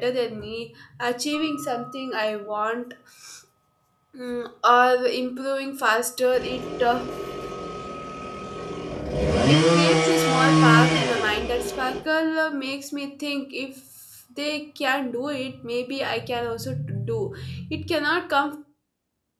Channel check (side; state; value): both; identical; correlation 1.00